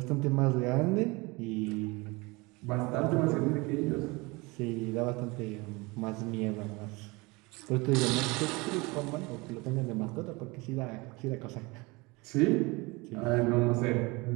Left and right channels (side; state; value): left; quieter; 25.0 dB